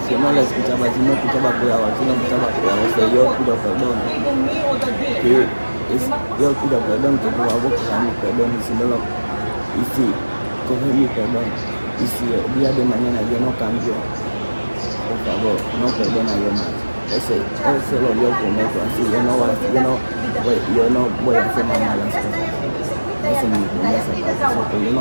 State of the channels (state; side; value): inverted; both; correlation -1.00